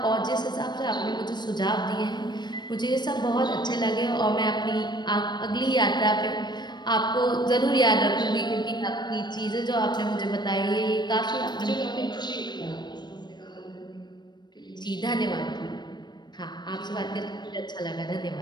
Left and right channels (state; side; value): late; right; 0.21 ms